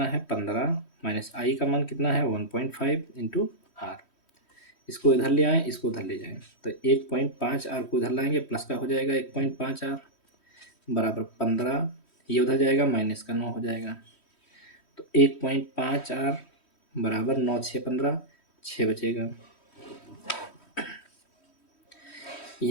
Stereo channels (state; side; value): late; right; 3.1 ms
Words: है 15 माइनस I का मान कितना है 1.5 इंटू R। इसको इधर ले आएँ, इसको उधर ले जाएँ, तो 1.5 R को इधर लाएंगे, प्लस का हो जाएगा 1.5 R बराबर 15, ये उधर जाएगा माइनस का 9 हो जाएगा। तो 1.5 R बराबर 9 6 15, 6 बचेगा।